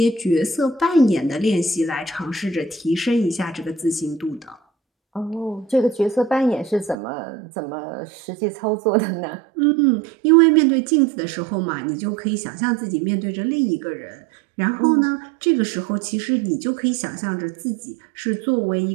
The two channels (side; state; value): left; drops out; at 7.0 s